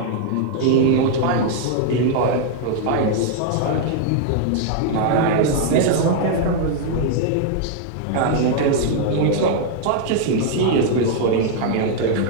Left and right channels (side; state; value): both; different; correlation 0.00